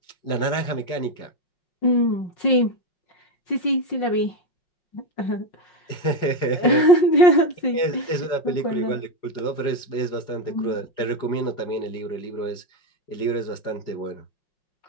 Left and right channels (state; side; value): late; right; 5.5 ms